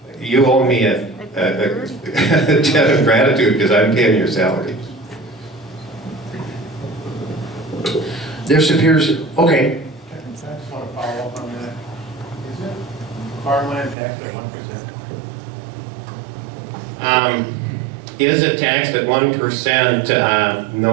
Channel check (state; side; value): drops out; left; at 14.0 s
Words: you owe me a debt of gratitude because I'm paying your salary. This appears, okay. I just want to follow up on that. Is it farmland tax at 1%? Is it taxed at 1%?